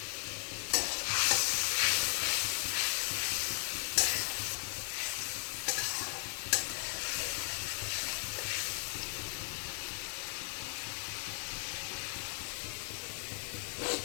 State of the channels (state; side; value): silent; right; 53 dB below the other